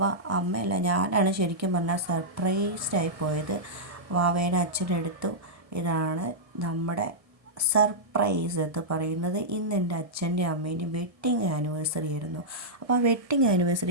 അമ്മയല്ല, ഞാനാണ് ശരിക്കും പറഞ്ഞാൽ സർപ്രൈസ്ഡായി പോയത്. വാവേനെ അച്ഛനെടുത്തു. ഇതാണ് നമ്മുടെ സർപ്രൈസ് എന്ന് പറയുന്നത്. ഇന്ന് എൻ്റെ അച്ഛൻ്റെ അമ്മേൻ്റെയും വെഡ്ഡിങ് ആനിവേഴ്സറി ആയിരുന്നു. അപ്പോൾ ആ വെഡ്ഡിങ്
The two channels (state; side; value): late; left; 1.7 ms